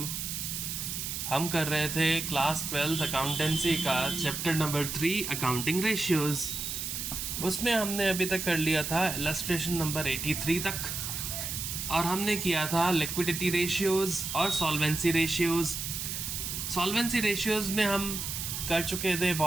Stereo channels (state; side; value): noise; right; hiss, 4 dB below the sound